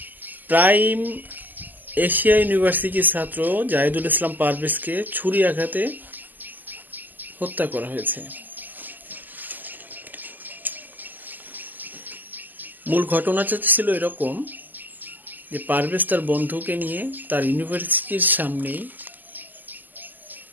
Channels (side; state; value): left; late; 0.086 ms